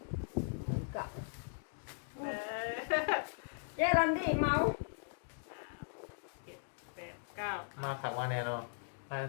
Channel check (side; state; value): right; silent; digital silence